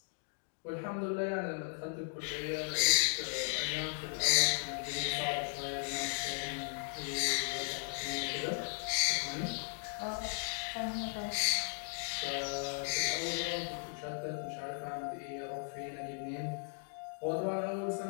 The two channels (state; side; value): silent; right; 53 dB below the other